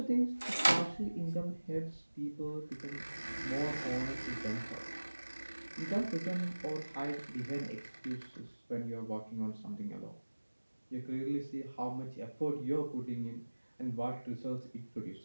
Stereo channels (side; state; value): both; inverted; correlation -1.00